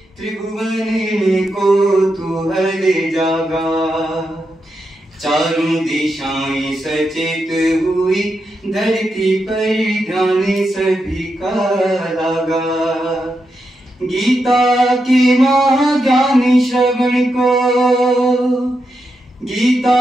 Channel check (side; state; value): both; normal; correlation 0.85